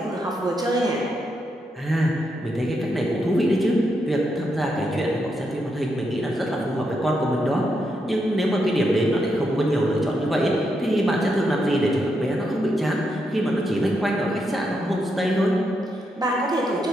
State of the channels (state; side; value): normal; both; correlation 0.82